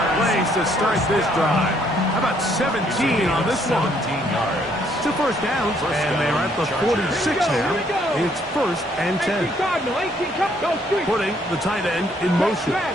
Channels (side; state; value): both; normal; correlation 0.68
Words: plays to start this drive. How about 17 on this one? 17 yards. 2 first downs, and they're at the 46 now. It's first and 10. 18 Cardinal, 18 Cup, go street. Putting the tight end in motion.